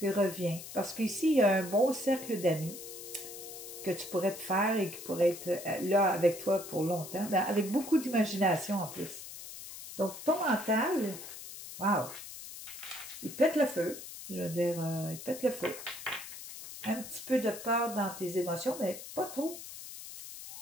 reviens. Parce qu'ici, il y a un bon cercle d'amis que tu pourrais te faire et qui pourrait être là avec toi pour longtemps, ben, avec beaucoup d'imagination en plus. Donc, ton mental, wow, il pète le feu. Je veux dire, il pète le feu. Un petit peu de peur dans tes émotions, mais pas trop.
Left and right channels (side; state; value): left; noise; hiss, 12 dB below the sound